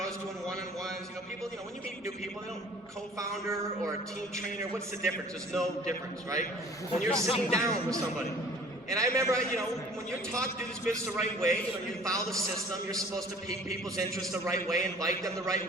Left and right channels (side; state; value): both; normal; correlation 0.49